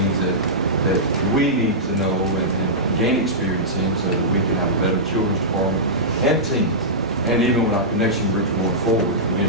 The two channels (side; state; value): both; normal; correlation -0.14